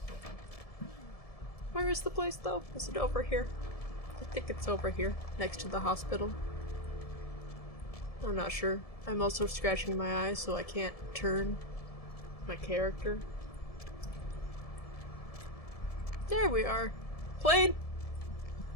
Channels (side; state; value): right; late; 1.7 ms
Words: Where is the place, though? Is it over here? I think it's over here, next to the hospital. I'm not sure. I'm also scratching my eyes, so I can't turn my character. There we are. Plane!